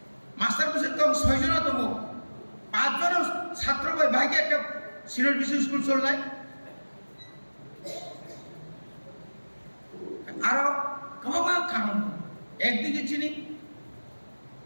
মাস্টার বসে কম 6 জন তম 5 জন ছাত্র ভাইকে একটা সিরিয়াল বিসি স্কুল চললাই আর কমা কারণ একদিকে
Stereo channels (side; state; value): both; inverted; correlation -1.00